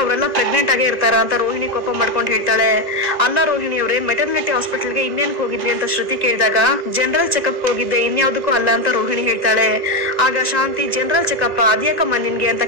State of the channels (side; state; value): left; late; 2.0 ms